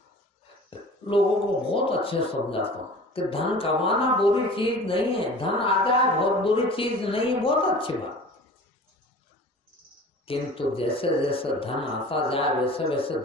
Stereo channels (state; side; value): normal; both; correlation 0.41